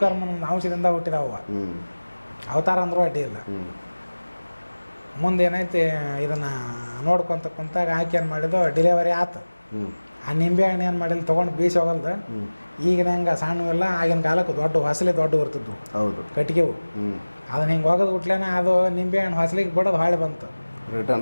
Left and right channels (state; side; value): inverted; both; correlation -1.00